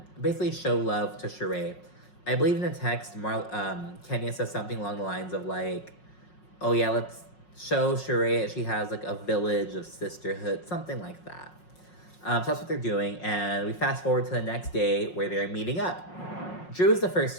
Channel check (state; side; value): late; right; 5.5 ms